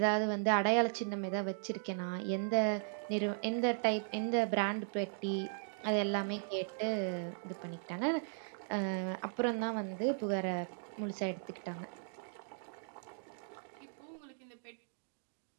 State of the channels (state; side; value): silent; left; digital silence